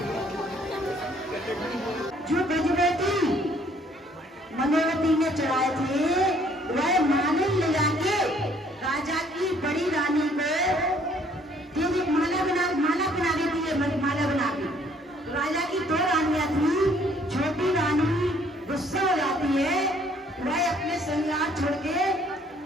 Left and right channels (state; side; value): normal; both; correlation 0.62